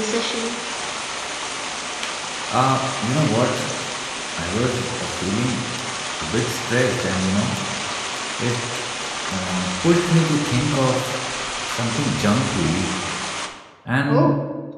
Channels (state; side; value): identical; both; correlation 1.00